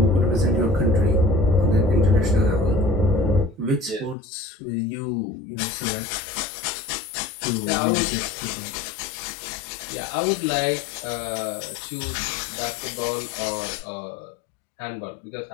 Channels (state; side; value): drops out; right; at 4.2 s